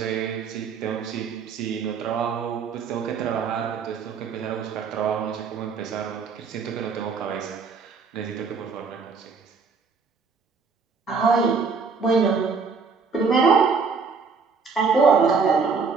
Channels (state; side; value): quieter; left; 5.1 dB